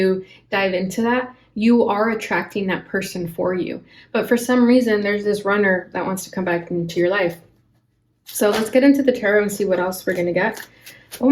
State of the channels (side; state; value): both; identical; correlation 1.00